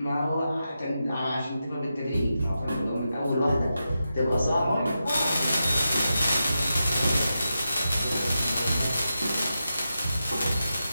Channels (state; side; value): inverted; both; correlation -0.89